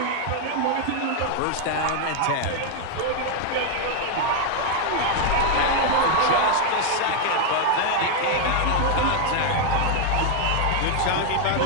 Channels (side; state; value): both; different; correlation 0.00